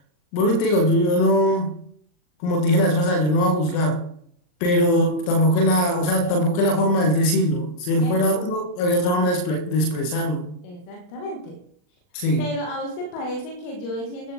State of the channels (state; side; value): late; right; 39 ms